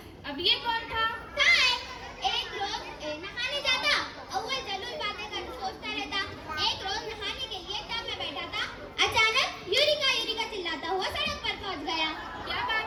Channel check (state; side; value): identical; both; correlation 1.00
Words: अब ये कौन था? एक रोज नहाने जाता, अव्वल जरूर बातें कर सोचता रहता। एक रोज नहाने के लिए टब में बैठा था, अचानक यूरिका यूरिका चिल्लाता हुआ सड़क पर पहुंच गया। क्या